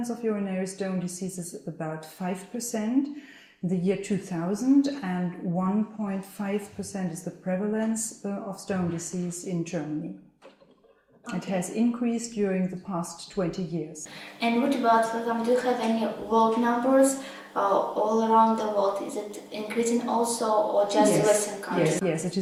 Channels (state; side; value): identical; both; correlation 1.00